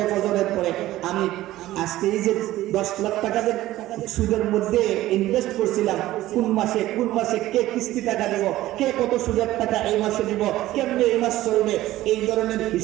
ফজরের পরে আমি আজকে এই যে 10 লাখ টাকা সুদের মধ্যে ইনভেস্ট করছিলাম, কোন মাসে কে কিস্তি টাকা দেব, কে কত সুদের টাকা এই মাসে দিব, কেমনে এই মাস চলবে, এই ধরনের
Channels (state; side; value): quieter; left; 15.6 dB